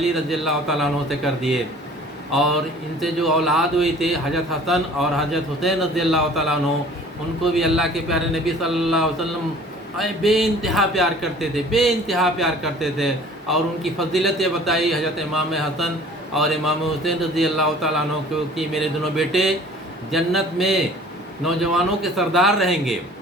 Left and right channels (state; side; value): normal; both; correlation 0.49